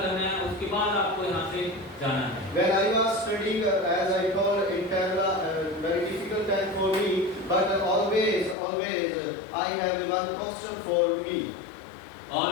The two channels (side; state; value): right; drops out; at 8.6 s